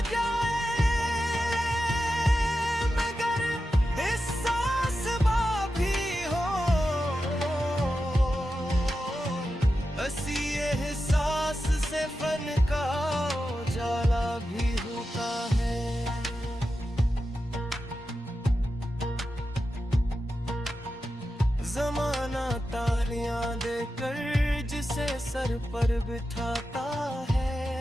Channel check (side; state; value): both; normal; correlation 0.90